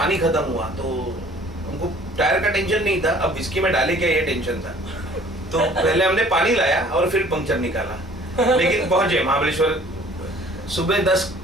खत्म हुआ, तो हमको टायर का टेंशन नहीं था, अब विस्की में डाले क्या ये टेंशन था. तो पहले हमने पानी लाया और फिर पंक्चर निकाला. लेकिन पहुंचे महाबलेश्वर, सुबह 10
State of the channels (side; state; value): both; normal; correlation 0.53